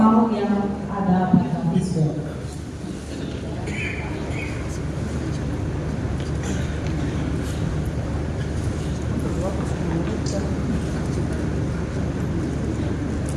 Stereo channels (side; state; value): both; identical; correlation 1.00